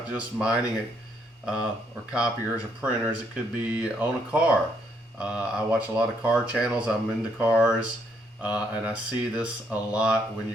just mining or copiers or printers. It could be on a car. I watch a lot of car channels. I'm into cars, and I see this a lot when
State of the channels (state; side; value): normal; both; correlation 0.72